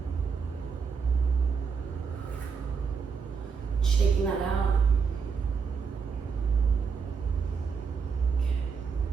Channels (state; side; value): quieter; left; 5.7 dB